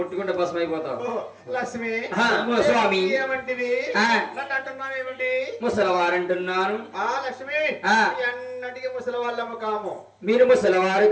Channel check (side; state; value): both; identical; correlation 1.00